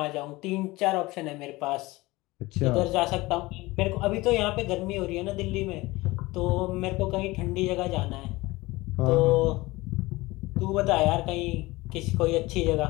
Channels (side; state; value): right; quieter; 20.7 dB